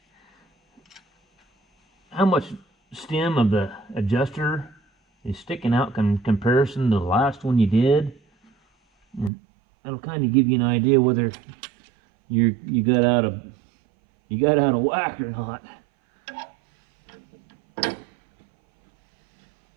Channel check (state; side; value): drops out; left; at 9.3 s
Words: how much stem of the adjuster is sticking out in comparison to the last one you did. And that'll kind of give you an idea whether you got out of whack or not.